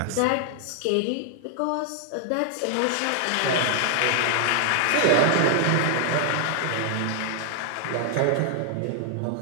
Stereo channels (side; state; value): both; different; correlation 0.00